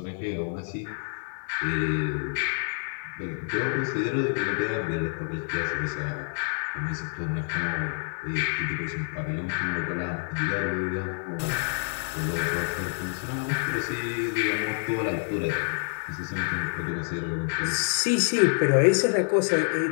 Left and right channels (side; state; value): right; silent; 60 dB below the other